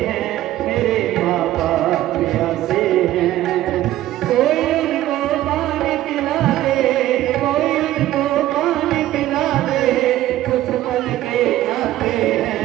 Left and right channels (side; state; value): left; quieter; 14.4 dB